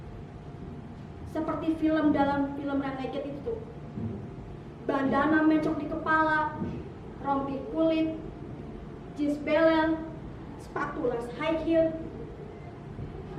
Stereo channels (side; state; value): both; identical; correlation 1.00